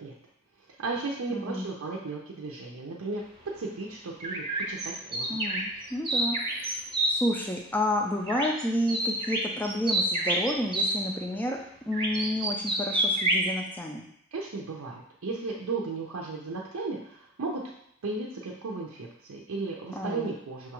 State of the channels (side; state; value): both; normal; correlation 0.36